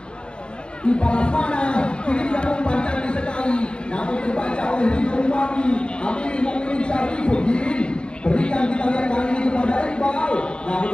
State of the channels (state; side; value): late; right; 0.052 ms